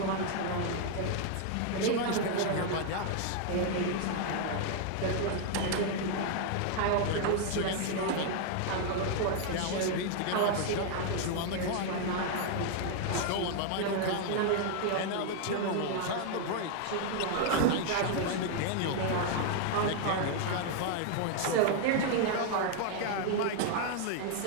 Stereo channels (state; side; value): different; both; correlation 0.00